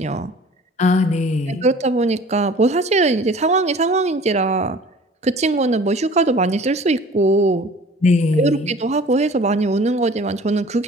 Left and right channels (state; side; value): normal; both; correlation 0.47